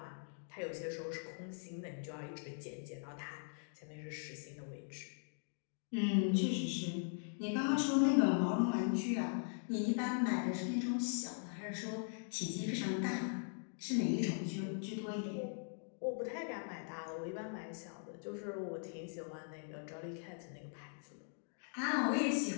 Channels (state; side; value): silent; right; digital silence